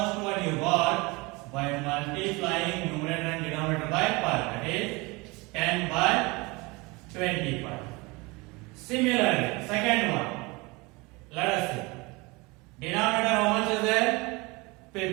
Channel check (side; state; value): left; quieter; 25.2 dB